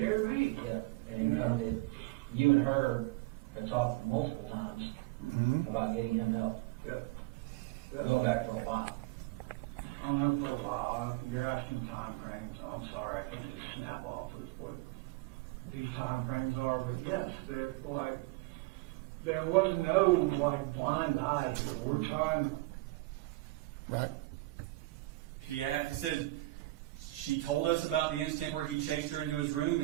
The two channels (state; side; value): quieter; left; 19.9 dB